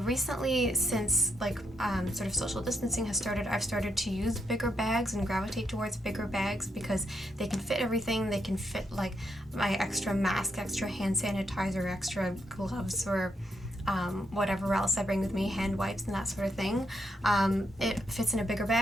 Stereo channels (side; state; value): both; normal; correlation 0.79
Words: since like sort of social distancing has started, I've started to use bigger bags and gravitate towards bigger bags because they can fit everything. They can fit like my extra mask, extra hand sanitizer, extra gloves, or whatever else I bring with me, hand wipes and that sort of thing. It fits in a bigger